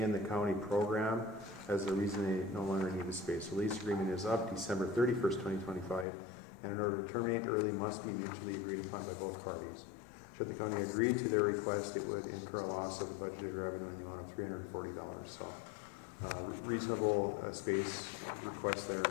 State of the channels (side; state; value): right; drops out; at 6.1 s